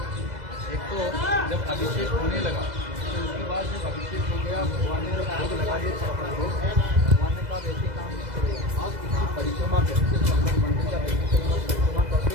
एक तो जब अभिषेक होने लगा तो उसके बाद जब अभिषेक हो गया भगवान ने भोग लगा दिए। भगवान ने कहा वैसे काम नहीं करेगा, आप इसकी परिक्रमा करते मंदिर का परिक्रमा करते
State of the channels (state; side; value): late; left; 2.0 ms